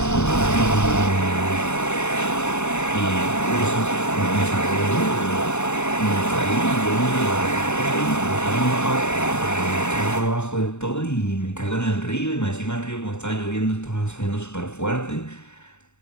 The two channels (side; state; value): right; late; 0.82 ms